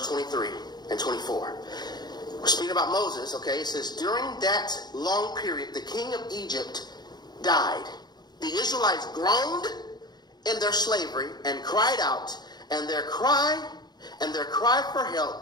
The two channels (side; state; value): right; late; 0.20 ms